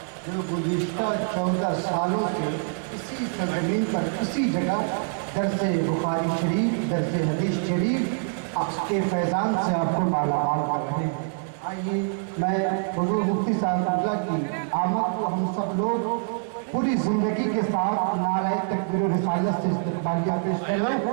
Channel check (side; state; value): left; silent; 61 dB below the other